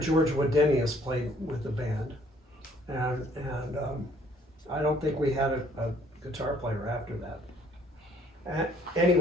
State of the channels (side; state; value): both; normal; correlation 0.62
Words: Wadenius played with the band, and I don't think we had a guitar player after that.